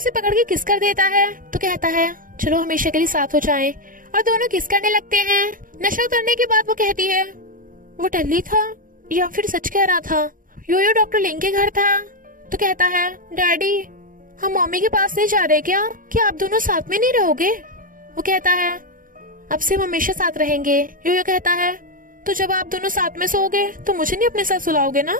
पकड़ के किस कर देता है, तो कहता है चलो हमेशा के लिए साथ हो जाएं, और दोनों किस करने लगते हैं। नशा उतरने के बाद वो कहती है वो टल्ली था या फिर सच कह रहा था। योयो डॉक्टर लिंग के घर था, तो कहता है डैडी हम मम्मी के पास नहीं जा रहे क्या? क्या आप दोनों साथ में नहीं रहोगे? वो कहता है अब से हम हमेशा साथ रहेंगे। योयो कहता है तो जब आप दोनों साथ में सोओगे तो मुझे नहीं अपने साथ सुलाओगे ना?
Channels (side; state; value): left; late; 0.40 ms